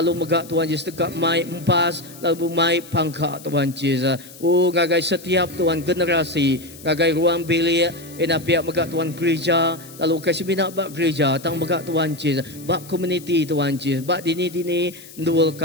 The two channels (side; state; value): left; noise; hiss, 19 dB below the sound